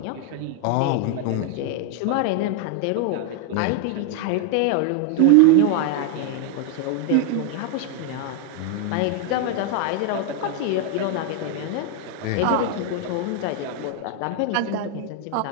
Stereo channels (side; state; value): both; different; correlation 0.00